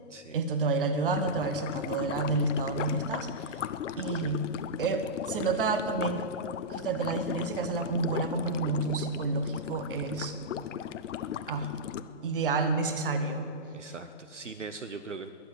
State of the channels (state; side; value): normal; both; correlation -0.11